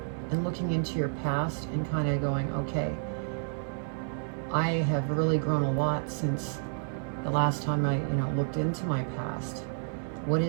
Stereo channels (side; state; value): left; silent; 58 dB below the other